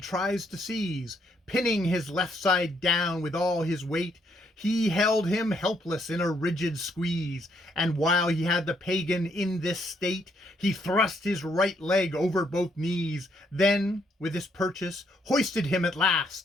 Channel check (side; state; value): both; normal; correlation 0.72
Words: to seize. Pinning his left side down with all his weight, he held him helpless in a rigid squeeze, and while he had the pagan in this state, he thrust his right leg over both knees, then, with his purchase, hoisted him at